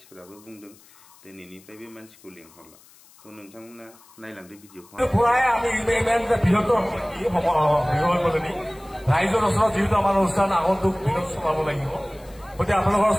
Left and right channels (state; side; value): noise; left; hiss, 26 dB below the sound